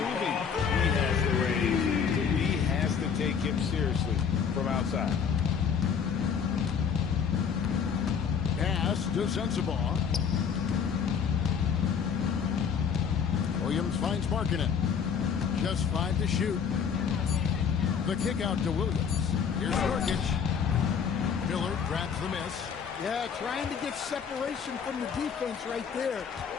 he has the range. He has to take him seriously from outside. Pass to Sensabaugh. Williams finds Markkanen. Just 5 to shoot. The kick out to Williams. Here's Nurkic. Miller grabs the miss. Yeah, trying to get separation from the defense right there.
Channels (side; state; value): right; quieter; 6.9 dB